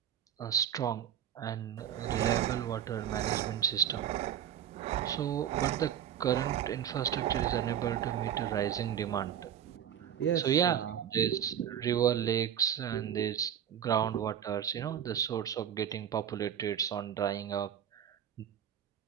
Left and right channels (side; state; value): left; quieter; 9.6 dB